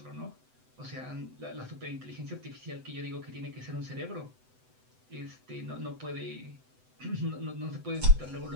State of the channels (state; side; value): late; left; 7.9 ms